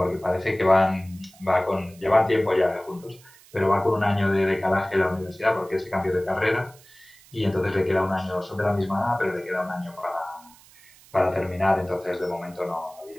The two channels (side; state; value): right; noise; hiss, 25 dB below the sound